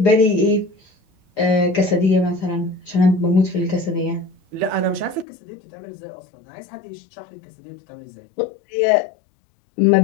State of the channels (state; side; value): drops out; right; at 5.2 s